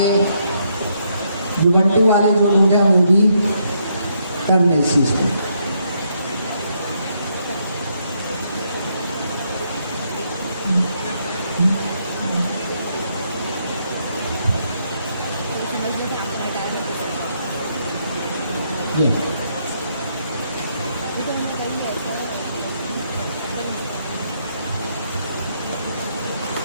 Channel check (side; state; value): both; inverted; correlation -0.75